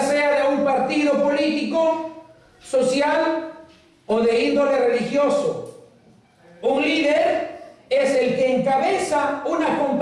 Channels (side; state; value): both; identical; correlation 1.00